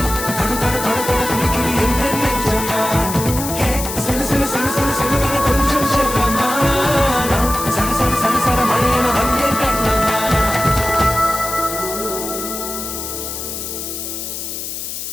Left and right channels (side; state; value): left; noise; hiss, 6 dB below the sound